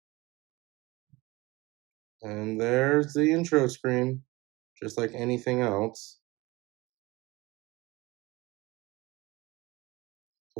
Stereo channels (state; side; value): quieter; left; 22.1 dB